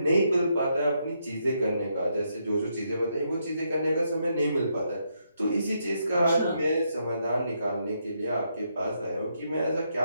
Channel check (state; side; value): inverted; both; correlation -0.78